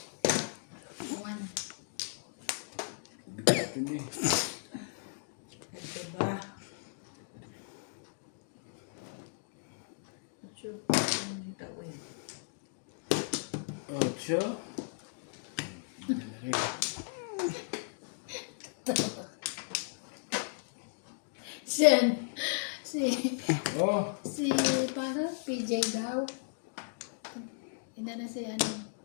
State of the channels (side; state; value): right; silent; digital silence